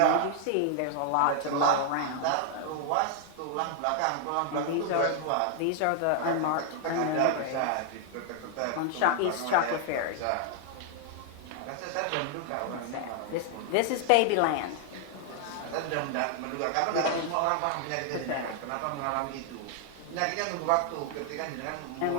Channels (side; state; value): both; different; correlation 0.00